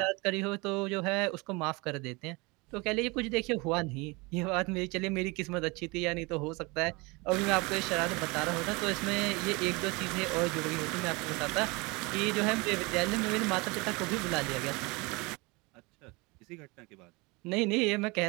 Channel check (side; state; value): left; quieter; 26.3 dB